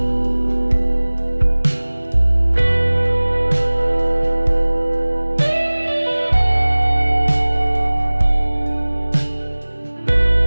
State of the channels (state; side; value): inverted; both; correlation -1.00